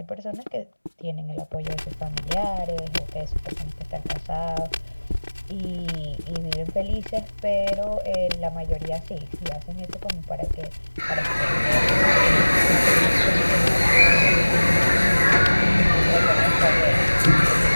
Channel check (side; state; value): both; inverted; correlation -1.00